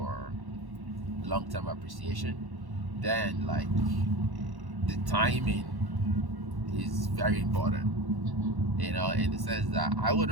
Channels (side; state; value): left; late; 1.1 ms